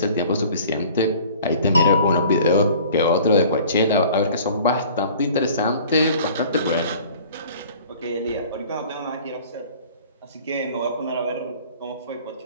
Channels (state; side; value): inverted; both; correlation -0.48